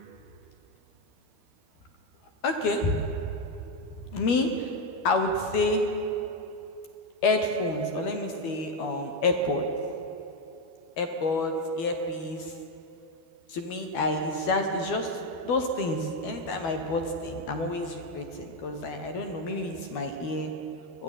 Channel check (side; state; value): right; late; 12 ms